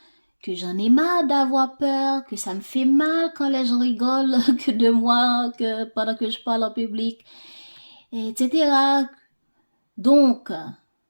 Que j'en ai marre d'avoir peur, que ça me fait mal quand les gens rigolent que de moi, que pendant que je parle en public, etc. Donc,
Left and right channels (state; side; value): inverted; both; correlation -1.00